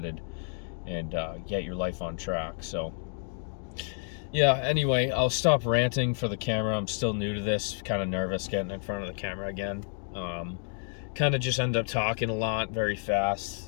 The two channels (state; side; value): silent; right; 58 dB below the other